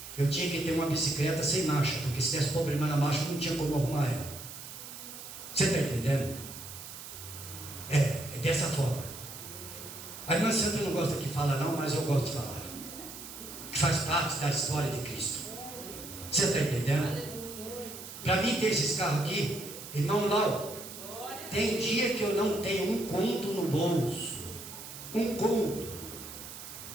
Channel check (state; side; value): noise; right; hiss, 12 dB below the sound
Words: eu tinha que ter uma bicicleta sem marcha, porque se desse problema na marcha, eu não tinha como arrumar ela. Você está entendendo? É dessa forma. A irmã Sandra não gosta que fala não, mas eu gosto de falar. Que faz parte da história de Cristo. Você está entendendo? Para mim ter esses carros aqui, irmão Lau, tem dia que eu não tenho um conto no bolso. Um conto.